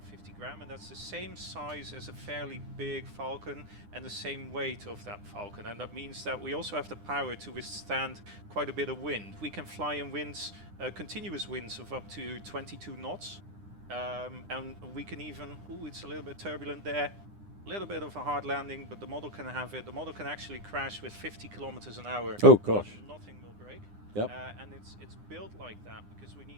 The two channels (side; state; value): left; late; 9.8 ms